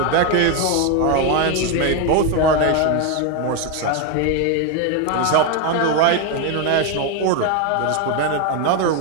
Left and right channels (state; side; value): different; both; correlation 0.02